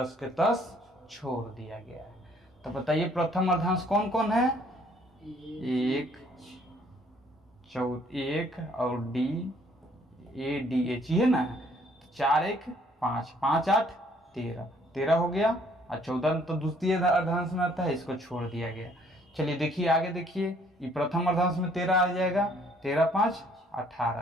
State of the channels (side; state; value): both; normal; correlation 0.62